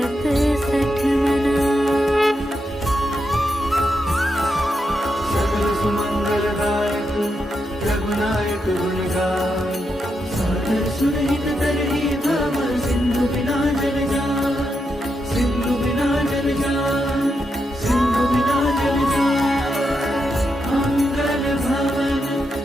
सठ मना। सकल सुमंगलदायक रघुनायक गुण गाय सादर सुरहित तरहि भव सिंधु बिना जल जाय सिंधु बिना जल जाय सिंधु बिना जल जाय। मंगल भवन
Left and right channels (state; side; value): normal; both; correlation 0.84